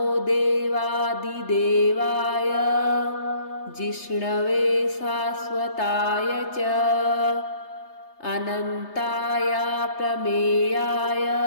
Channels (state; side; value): late; right; 3.3 ms